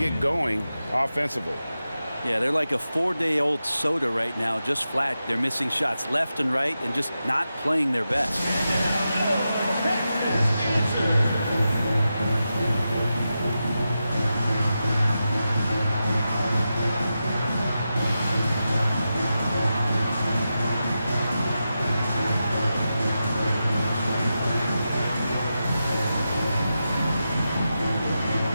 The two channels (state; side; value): inverted; both; correlation -0.90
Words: going offensively. Yeah, they're like a 4-day-old soda right now, just flat. They're missing shots left and right and just not playing their best.